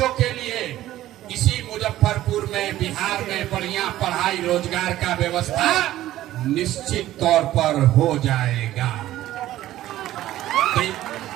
के लिए इसी मुजफ्फरपुर में, बिहार में बढ़िया पढ़ाई रोजगार का व्यवस्था निश्चित तौर पर हो जाएगा।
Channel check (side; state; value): left; quieter; 14.3 dB